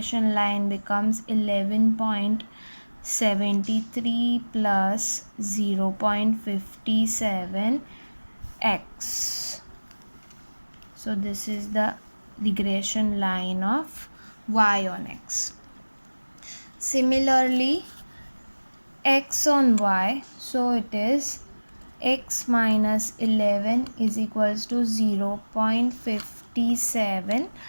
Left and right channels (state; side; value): inverted; both; correlation -1.00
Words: line becomes 11.73 plus 0.57 x. So this is the regression line of y on x. Similarly, x on y, so it is x minus 11 is equals to 0.57